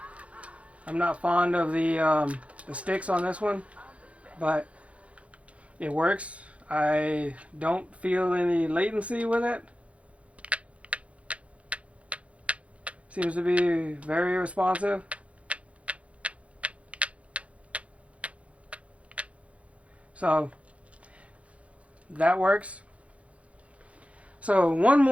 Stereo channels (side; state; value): left; late; 0.063 ms